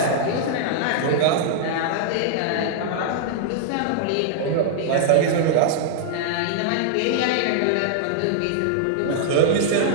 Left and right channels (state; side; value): different; both; correlation -0.01